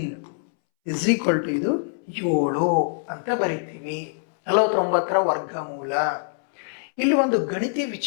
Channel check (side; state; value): right; silent; 63 dB below the other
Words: is equal to ಇದು 7 ಅಂತ ಬರಿತೀವಿ. 49ರ ವರ್ಗಮೂಲ. ಇಲ್ಲಿ ಒಂದು ಗಣಿತೀಯ